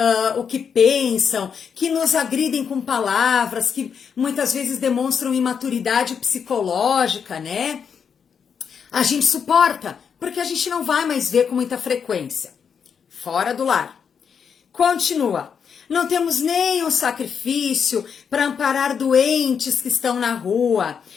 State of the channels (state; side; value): quieter; right; 6.9 dB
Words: o que pensam, que nos agridem com palavras, que muitas vezes demonstram imaturidade psicológica, né? A gente suporta, porque a gente não vai mais ver com muita frequência. Fora do lar. Continua. Não temos nem um sacrifício para amparar doentes que estão na rua,